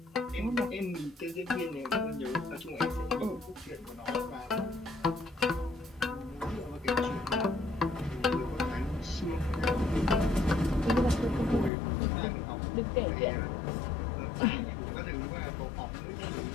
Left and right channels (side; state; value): right; drops out; at 11.7 s